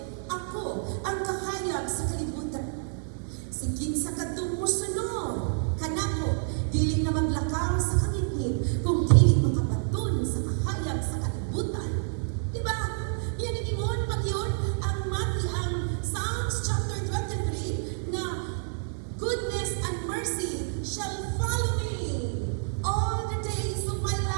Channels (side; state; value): left; silent; 57 dB below the other